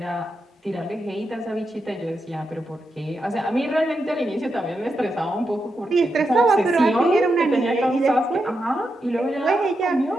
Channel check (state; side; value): normal; both; correlation 0.86